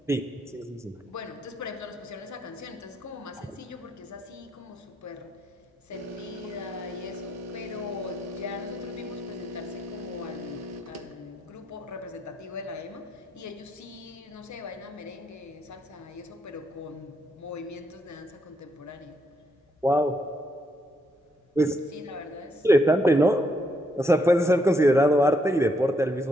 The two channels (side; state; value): both; normal; correlation 0.75